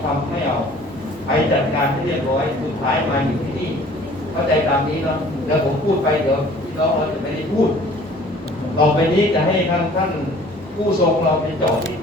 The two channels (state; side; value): normal; both; correlation 0.51